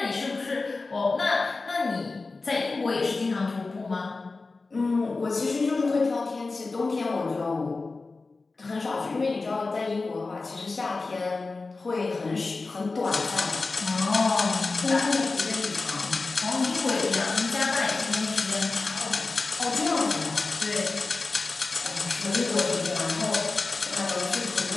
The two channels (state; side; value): quieter; right; 3.7 dB